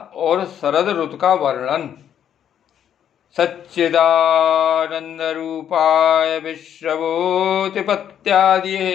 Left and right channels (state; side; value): quieter; right; 9.5 dB